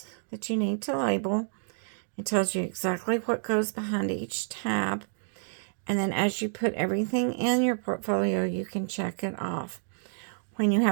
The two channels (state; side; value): silent; left; digital silence